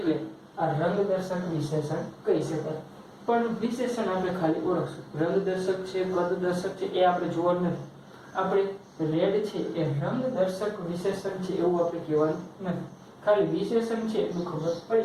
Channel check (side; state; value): both; identical; correlation 1.00